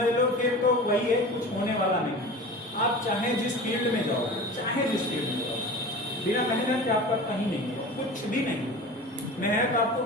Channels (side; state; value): both; normal; correlation 0.35